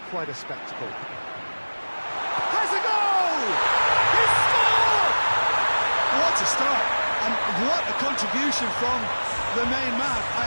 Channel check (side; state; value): both; inverted; correlation -1.00